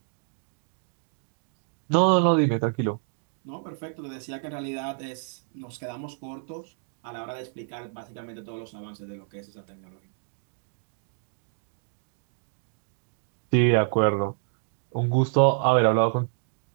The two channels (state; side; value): silent; left; 59 dB below the other